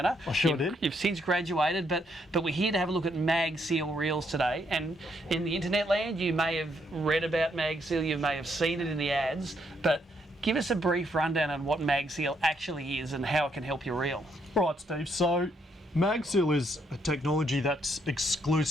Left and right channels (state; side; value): normal; both; correlation 0.74